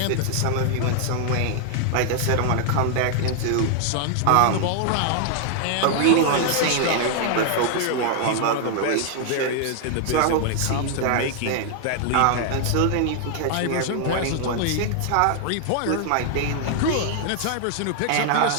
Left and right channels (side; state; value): both; different; correlation 0.00